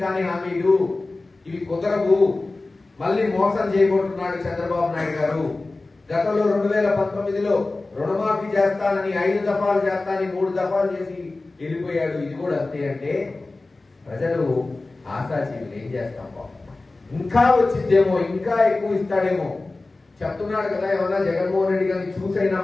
కానీ హామీలు, ఇవి కుదరవు, మళ్ళీ మోసం చేయబోతున్నాడు చంద్రబాబు నాయుడు గారు. గతంలో 2019లో రుణమాఫీ చేస్తానని 5 దఫాలు చేస్తానని 3 దఫాలు చేసి వెళ్ళిపోయాడు. ఇది కూడా అంతే. అంటే ప్రజలు ఆశాజీవులు. ఏం చేస్తాం పాపం, ఇంకా వచ్చిద్దేమో, ఇంకా ఎక్కువ ఇస్తాడేమో చెప్తున్నాడు కదా. ఏమన్నా జగన్మోహన్ రెడ్డి గారిని చూసైనా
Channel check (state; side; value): quieter; right; 3.3 dB